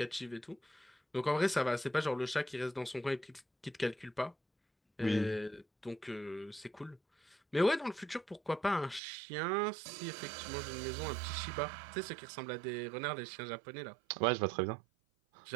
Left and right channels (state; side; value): drops out; left; at 9.0 s